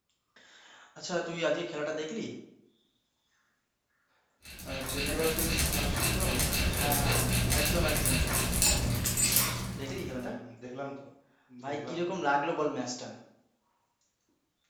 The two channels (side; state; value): both; identical; correlation 1.00